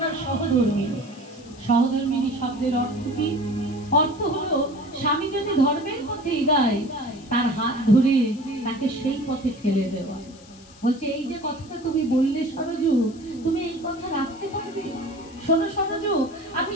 সহধর্মিনী। সহধর্মিনী শব্দের অর্থ কি? অর্থ হলো স্বামী যদি ধর্মের পথে এগায় তার হাত ধরে তাকে সেই পথে ঠেলে দেওয়া। বলছে এই যে কথাটা তুমি বললে সরজু, তুমি এই কথা রাখতে পারবে? শোনো সরজু, আমি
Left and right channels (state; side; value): noise; left; hiss, 24 dB below the sound